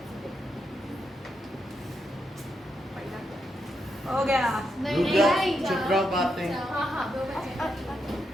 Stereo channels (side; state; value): both; normal; correlation 0.83